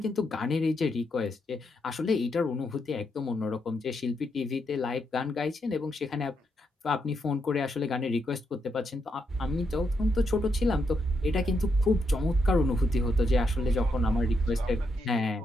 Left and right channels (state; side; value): normal; both; correlation 0.80